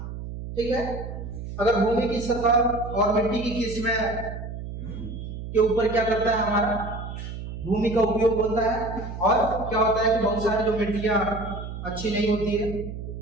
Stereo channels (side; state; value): right; noise; hum, 8 dB below the sound